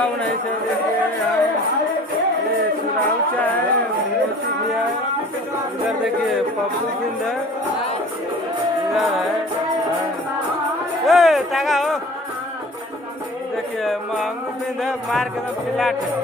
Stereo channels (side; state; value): both; normal; correlation 0.46